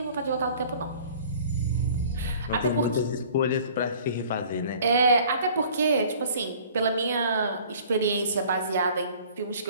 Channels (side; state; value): both; inverted; correlation -0.51